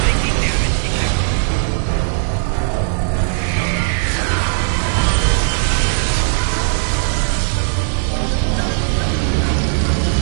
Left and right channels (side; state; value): left; silent; digital silence